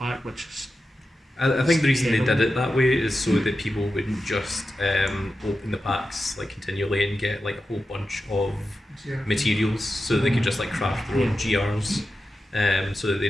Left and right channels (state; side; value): normal; both; correlation 0.91